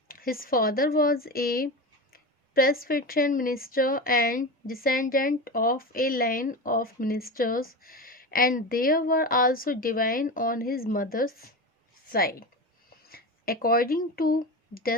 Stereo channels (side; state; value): both; normal; correlation 0.24